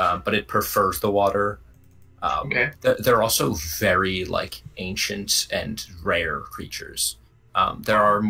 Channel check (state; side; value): identical; both; correlation 1.00